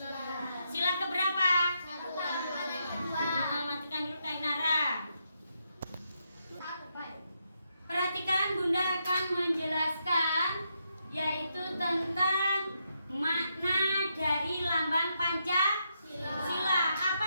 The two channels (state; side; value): inverted; both; correlation -0.81